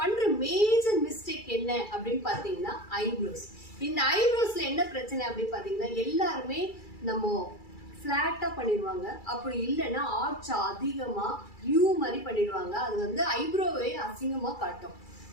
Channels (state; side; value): late; right; 2.3 ms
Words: மேஜர் மிஸ்டேக் என்ன அப்படின்னு பாத்தீங்கன்னா ஐப்ரோஸ். இந்த ஐப்ரோஸ்ல என்ன பிரச்சனை அப்படின்னு பாத்தீங்கன்னா எல்லாருமே நம்ம பிளாட்டா பண்ணிடுவாங்க, அப்படி இல்லைன்னா ஆர்ச் அதிகமா யூ மாதிரி பண்ணிடுவாங்க. அது வந்து ஐப்ரோவே அசிங்கமா காட்டும்.